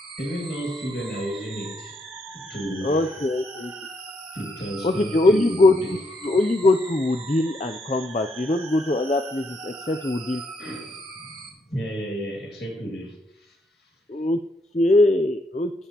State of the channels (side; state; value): both; normal; correlation 0.75